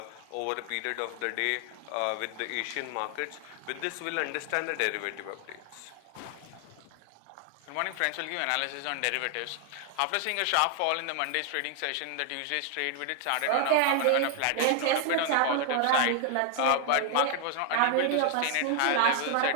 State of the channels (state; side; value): different; both; correlation 0.00